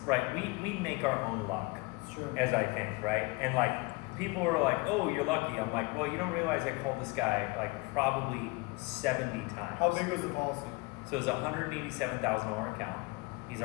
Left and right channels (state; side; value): quieter; right; 25.6 dB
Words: right, we make our own luck, sure, as I think, right? And like, people are like, oh, you're lucky. I'm like, well, you don't realize I called this guy like probably 70 times. How big was the policy? So it was a $187,000 account. He's